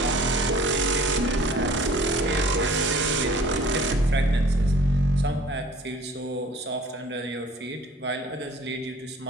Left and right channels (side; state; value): both; normal; correlation 0.50